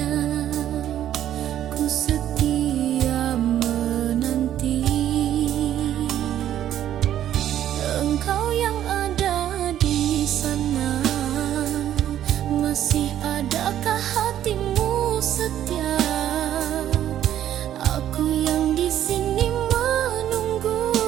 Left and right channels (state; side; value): quieter; left; 11.4 dB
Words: ku setia menanti. Engkau yang ada di sana, masih adakah hatimu setia? Aku yang di sini menunggu